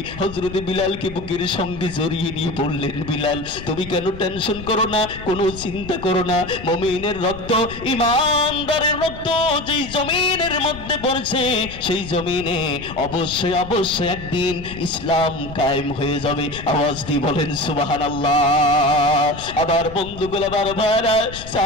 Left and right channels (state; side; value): noise; left; rumble, 13 dB below the sound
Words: হযরত বিলালকে বুকের সঙ্গে জড়িয়ে নিয়ে বললেন, বিলাল, তুমি কেন টেনশন করো না, কোনো চিন্তা করো না। মুমিনের রক্ত, ঈমানদারের রক্ত যেই জমিনের মধ্যে পড়ছে, সেই জমিনে অবশ্যই অবশ্যই একদিন ইসলাম কায়েম হয়ে যাবে। আওয়াজ দিয়ে বলেন সুবহানাল্লাহ। আবার বন্ধুগুলো, আবার ভাইরা,